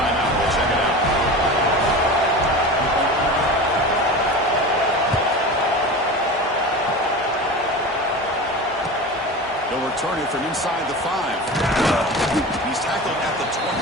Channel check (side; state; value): both; normal; correlation 0.30